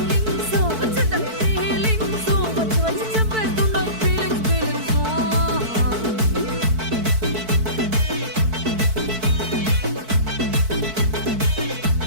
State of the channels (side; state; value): left; late; 4.5 ms